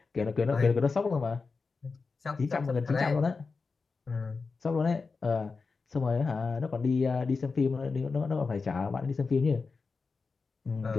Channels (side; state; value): right; quieter; 4.5 dB